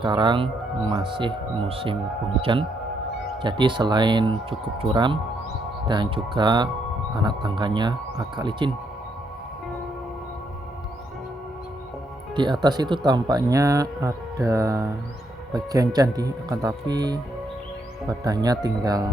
masih musim penghujan. Jadi selain cukup curam dan juga anak tangganya agak licin. Di atas itu tampaknya ada bagian candi, akan tapi badannya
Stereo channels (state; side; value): normal; both; correlation 0.76